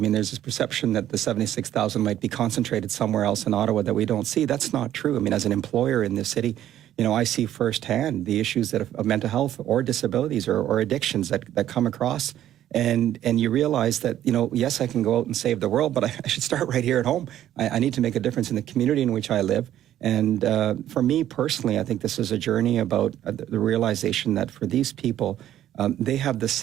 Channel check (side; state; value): left; quieter; 12.0 dB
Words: there's this perception that the 76,000 might be concentrated somewhere else in Ottawa that we don't see. That's not true. I mean, as an employer in this city, I see firsthand the issues of mental health or disabilities or addictions that come across. And you realize that, yes, I can go out and save the world, but I should start right here at home. I need to make a difference in the community in which I live. And for me personally, I think this is a journey about the realization that for these people, they have the